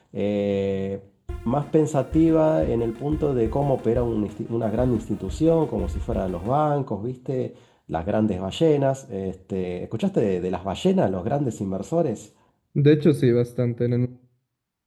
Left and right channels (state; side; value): identical; both; correlation 1.00